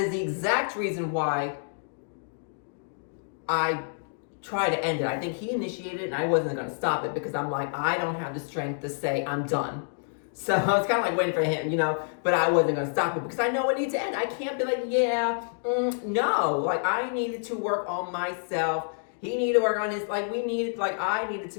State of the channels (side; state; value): right; silent; digital silence